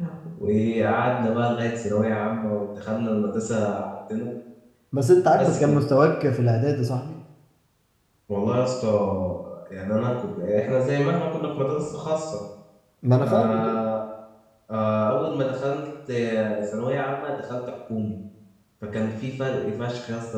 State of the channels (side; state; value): both; identical; correlation 1.00